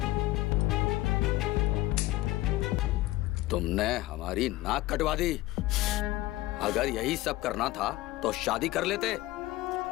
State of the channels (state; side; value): quieter; right; 17.8 dB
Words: तुमने हमारी नाक कटवा दी। अगर यही सब करना था तो शादी कर लेते।